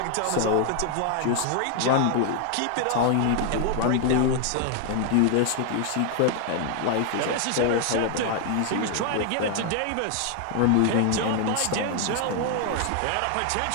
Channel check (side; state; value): both; different; correlation 0.00